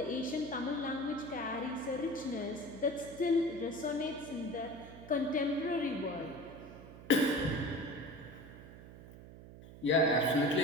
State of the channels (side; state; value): right; noise; hum, 16 dB below the sound